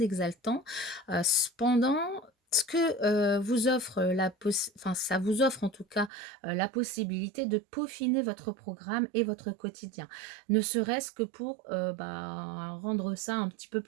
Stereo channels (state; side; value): drops out; left; at 6.1 s